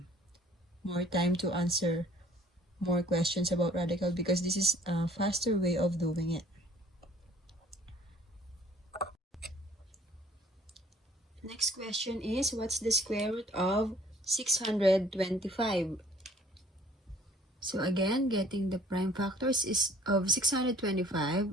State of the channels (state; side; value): normal; both; correlation 0.56